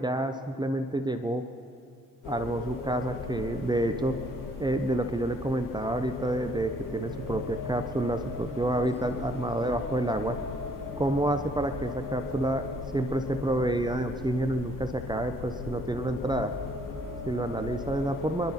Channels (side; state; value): both; normal; correlation 0.64